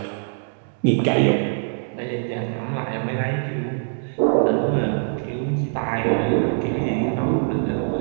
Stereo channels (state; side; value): silent; left; digital silence